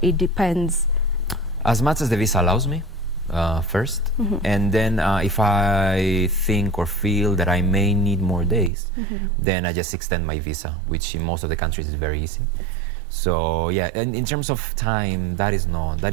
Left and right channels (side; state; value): left; drops out; at 8.7 s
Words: it depends? As much as the visa allows me, first. And then if I think or feel that I may need more days, then I just extend my visa, which in most of the countries is very easy. So yeah, and in terms of time, that is